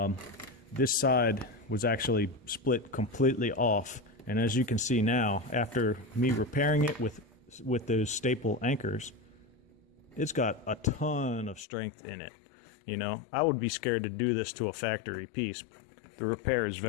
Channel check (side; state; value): right; drops out; at 11.7 s